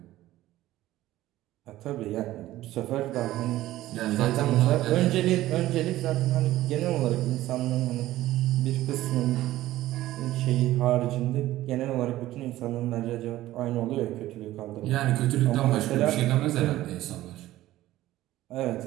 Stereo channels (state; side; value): quieter; left; 15.3 dB